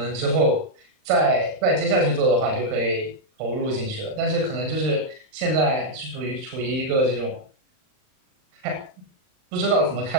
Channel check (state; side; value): late; left; 39 ms